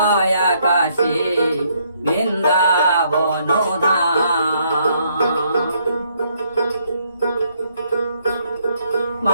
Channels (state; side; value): inverted; both; correlation -0.70